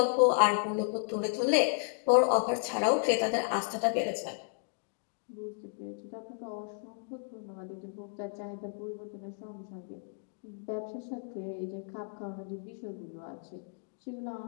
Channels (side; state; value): right; silent; digital silence